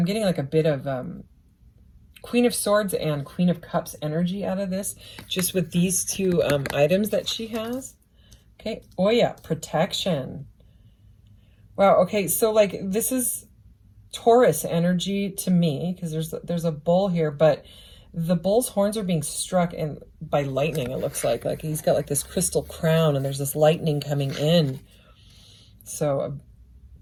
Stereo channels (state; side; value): identical; both; correlation 1.00